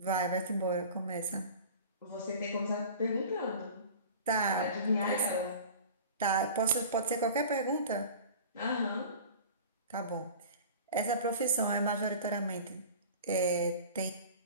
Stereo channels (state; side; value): inverted; both; correlation -0.39